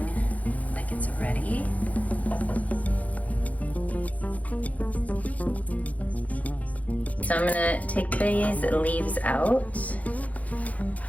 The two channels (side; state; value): right; late; 0.071 ms